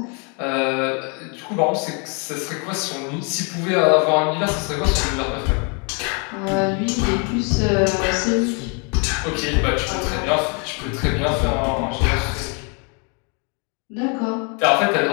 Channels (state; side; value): quieter; right; 35.2 dB